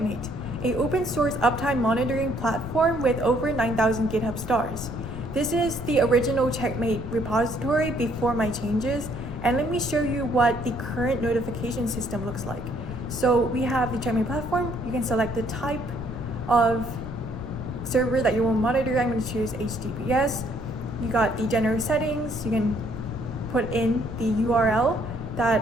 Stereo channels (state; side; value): noise; left; rumble, 9 dB below the sound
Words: an open source uptime monitoring platform with over 9,000 GitHub stars. This is the original Checkmate repository before my changes, and let me show you what the current notification system looks like. So we have the Checkmate platform. You can select the type of server that you will monitor. I'm going to choose HTTPS. You got the general settings. You can put in the URL